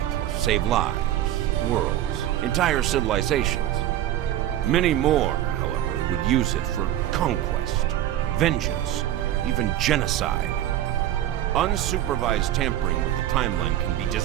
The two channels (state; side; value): quieter; left; 12.5 dB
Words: to save lives, worlds, entire civilizations. Many more, however, would use it for conquest, vengeance, even genocide. Unsupervised tampering with the timeline can be